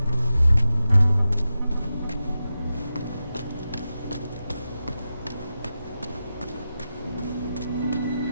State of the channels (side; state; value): both; inverted; correlation -0.91